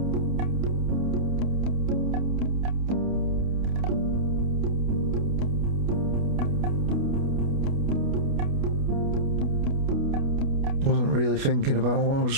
Wasn't really thinking about what I was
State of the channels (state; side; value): late; left; 29 ms